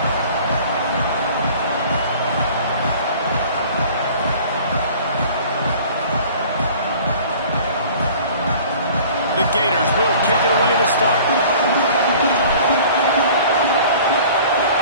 The Gators will kick it away to start.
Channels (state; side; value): inverted; both; correlation -0.47